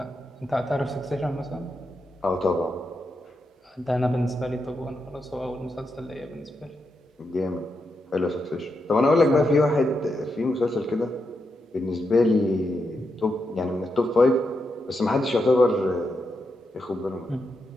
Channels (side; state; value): both; normal; correlation 0.85